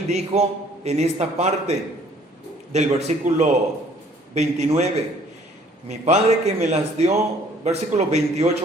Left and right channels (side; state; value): both; normal; correlation 0.58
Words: dijo en esta parte del versículo 29, mi Padre que me las dio, versículo